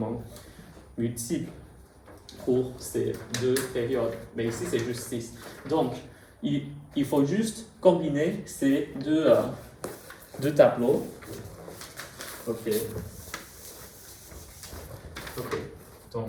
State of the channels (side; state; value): both; identical; correlation 1.00